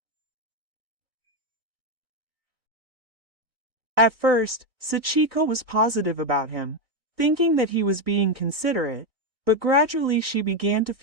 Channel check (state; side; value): late; left; 1.6 ms